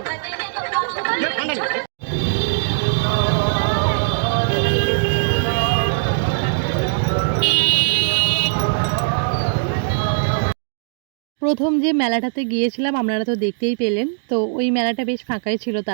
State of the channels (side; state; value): left; silent; digital silence